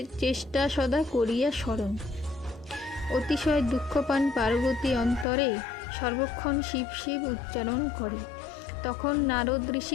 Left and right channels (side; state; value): right; drops out; at 5.2 s